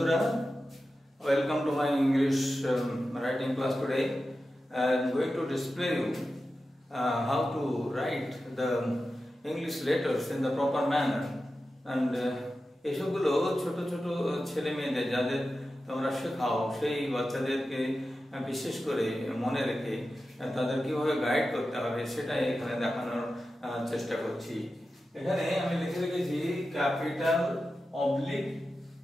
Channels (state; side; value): normal; both; correlation 0.92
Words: welcome to my English writing class today. I am going to display you how to write the English letters in the proper manner. And এসবগুলো ছোট ছোট ছেলে মেয়েদের যাদের তোমরা শেখাও সেই বাচ্চাদেরকে বিশেষ করে মনে রেখে তাদের কিভাবে গাইড করতে হবে সেটাই এখানে দেখানোর চেষ্টা করছি। এখানে আমি লিখে রেখেছি capital oblique